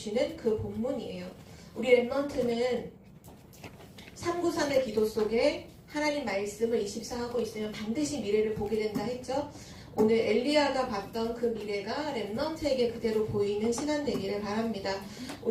그 본문이에요. 우리 랩넌트는 393의 기도 속에 하나님 말씀을 24하고 있으면 반드시 미래를 보게 된다 했죠. 오늘 엘리야가 봤던 그 미래가 랩넌트에게 그대로 보이는 시간 되기를 바랍니다.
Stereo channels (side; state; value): both; identical; correlation 1.00